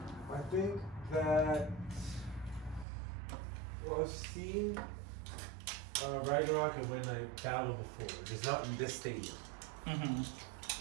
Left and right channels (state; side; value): drops out; left; at 2.9 s